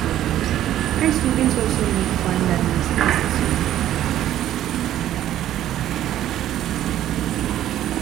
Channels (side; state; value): left; quieter; 12.3 dB